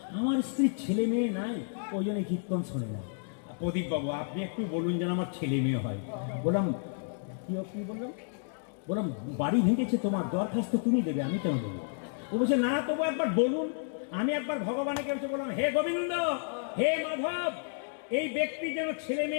আমার স্ত্রীর ছেলে মেয়ে নাই, ওই জন্য কীর্তন শোনে না। প্রদীপ বাবু, আপনি একটু বলুন যেন আমার ছেলে মেয়ে হয়। বললাম কি বললাম? বললাম বাড়ি ভেঙেছে তোমার, দরখাস্ত তুমি দেবে, আমি কেন দেবো? ও বলছে না, তবু একবার বলুন। আমি একবার ভগবানকে বললাম, হে গোবিন্দ, হে মাধব, এই ব্যক্তি যেন ছেলে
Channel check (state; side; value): silent; right; digital silence